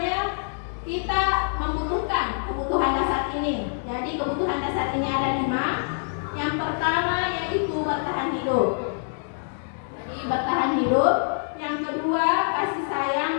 kita membutuhkan kebutuhan dasar ini. Jadi kebutuhan dasar ini ada 5. Yang pertama yaitu bertahan hidup. Jadi bertahan hidup. Yang kedua kasih sayang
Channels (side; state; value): right; silent; digital silence